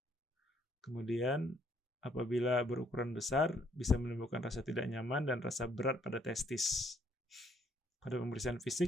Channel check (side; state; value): both; normal; correlation 0.68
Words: Kemudian apabila berukuran besar, bisa menimbulkan rasa tidak nyaman dan rasa berat pada testis. Pada pemeriksaan